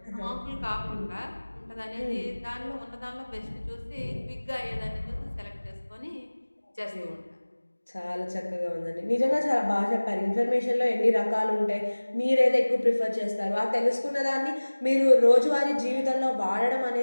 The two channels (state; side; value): inverted; both; correlation -1.00